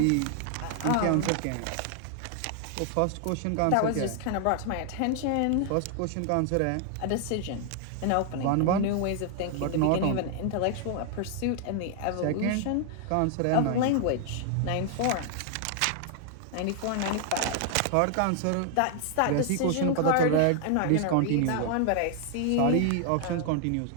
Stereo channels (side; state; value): both; different; correlation 0.00